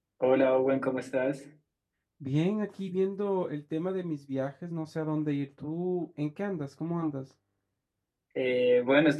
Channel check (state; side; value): identical; both; correlation 1.00